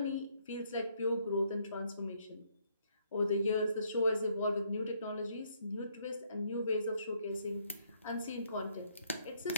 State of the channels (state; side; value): inverted; both; correlation -0.69